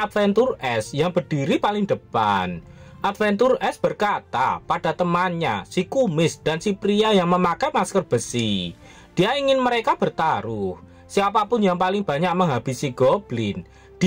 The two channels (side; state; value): both; identical; correlation 1.00